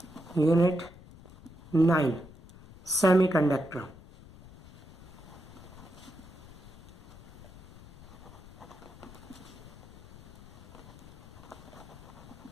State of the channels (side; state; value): left; noise; rumble, 19 dB below the sound